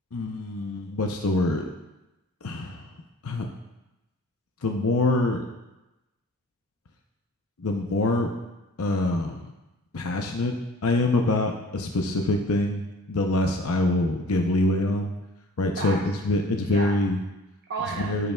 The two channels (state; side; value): normal; both; correlation 0.48